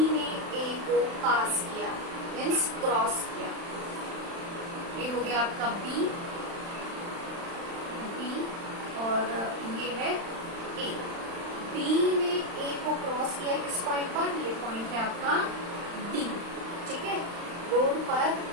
ने ए को पास किया, मीन्स क्रॉस किया। ये हो गया आपका बी और ये है ए। बी ने ए को क्रॉस किया किस पॉइंट पर? ये पॉइंट है आपका डी, ठीक है। रोड पर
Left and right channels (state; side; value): late; left; 35 ms